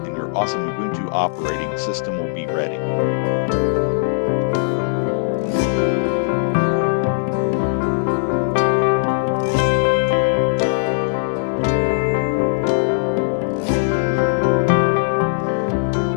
and your awesome Ubuntu operating system will be ready.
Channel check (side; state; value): right; silent; 60 dB below the other